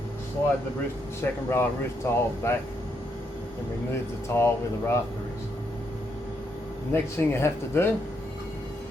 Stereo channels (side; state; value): both; normal; correlation 0.77